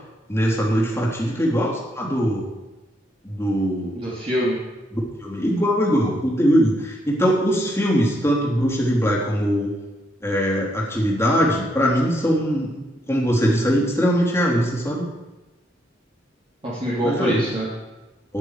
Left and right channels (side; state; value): both; normal; correlation 0.76